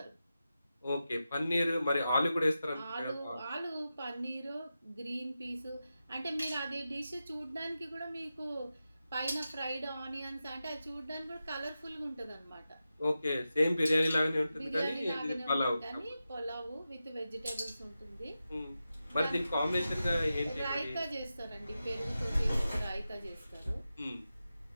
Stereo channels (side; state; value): both; inverted; correlation -0.91